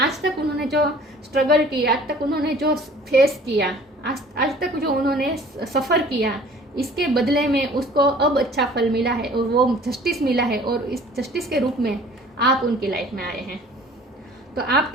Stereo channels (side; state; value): both; normal; correlation 0.50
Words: तक उन्होंने जो स्ट्रगल किया, आज तक उन्होंने जो फेस किया, आज तक जो उन्होंने सफ़र किया, इसके बदले में उसको अब अच्छा फल मिला है और वो जस्टिस मिला है। और इस जस्टिस के रूप में आप उनकी लाइफ में आए हैं। तो